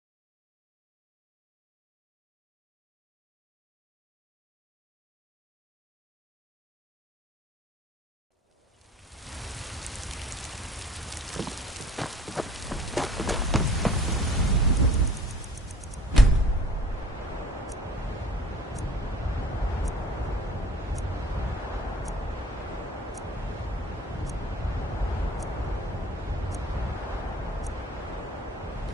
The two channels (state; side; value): normal; both; correlation 0.50